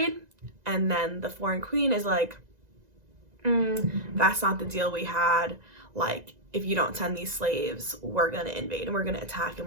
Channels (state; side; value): late; left; 1.9 ms